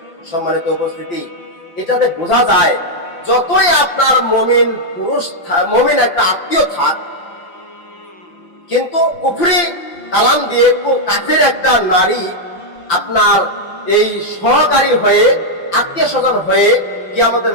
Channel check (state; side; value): late; right; 5.8 ms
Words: সম্মানিত উপস্থিতি, এটাতে বোঝা যায় যতই আপনার মুমিন একটা আত্মীয় থাক, কিন্তু কুফরি কালাম দিয়ে কাফের একটা নারী আপনার এই সহকারী হয়ে, আত্মীয় স্বজন হয়ে কিয়ামতের